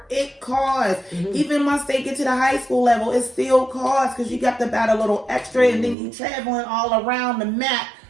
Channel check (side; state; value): left; drops out; at 6.0 s